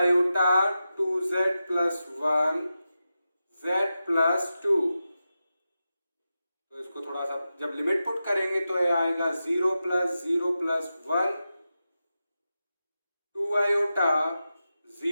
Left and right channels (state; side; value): inverted; both; correlation -0.91